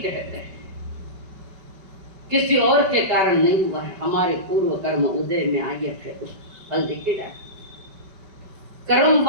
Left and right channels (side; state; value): left; late; 5.2 ms